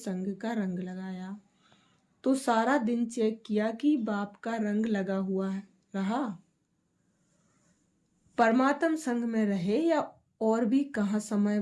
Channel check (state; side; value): identical; both; correlation 1.00